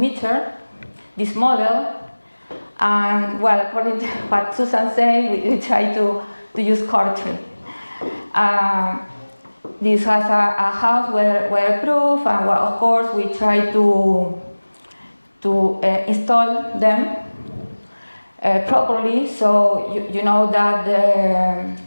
this model. And well, according to what Susan said, we try to use Cortree. This has a house weatherproof, and well, of course we try to install them properly, so you know that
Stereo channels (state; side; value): inverted; both; correlation -1.00